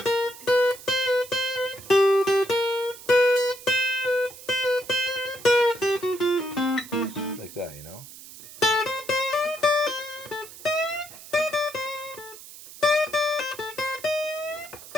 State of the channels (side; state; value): right; noise; hiss, 16 dB below the sound